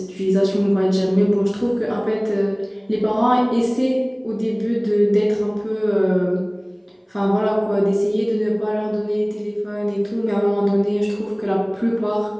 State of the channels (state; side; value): identical; both; correlation 1.00